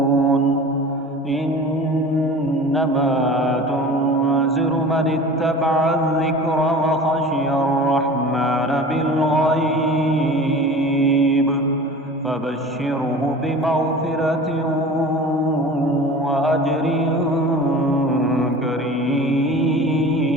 إنما تنذر من اتبع الذكر وخشي الرحمن بالغيب فبشره بمغفرة وأجر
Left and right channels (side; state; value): both; normal; correlation 0.39